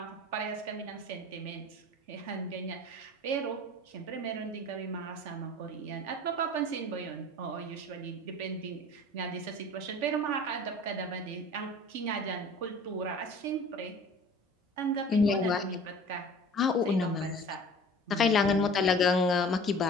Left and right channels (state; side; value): normal; both; correlation 0.44